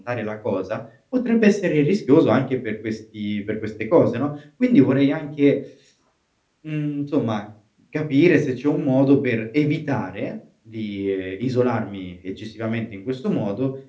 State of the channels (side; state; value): both; identical; correlation 1.00